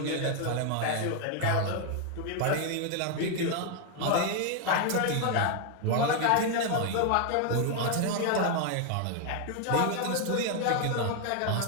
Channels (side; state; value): both; different; correlation 0.00